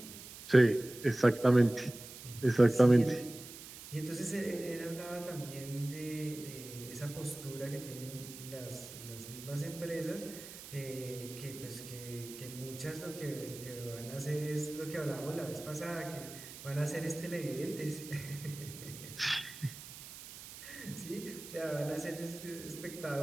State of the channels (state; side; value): noise; right; hiss, 14 dB below the sound